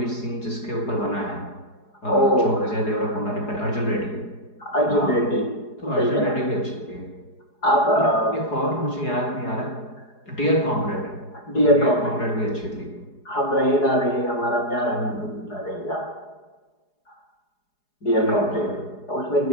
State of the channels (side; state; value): right; late; 4.8 ms